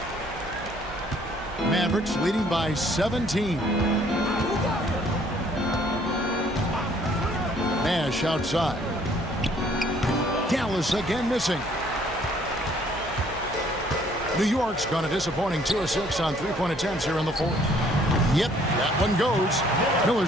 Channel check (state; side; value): noise; right; hum, 14 dB below the sound